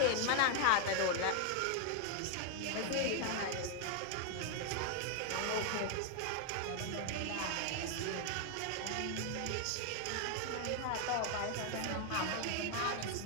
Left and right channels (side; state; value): both; different; correlation 0.00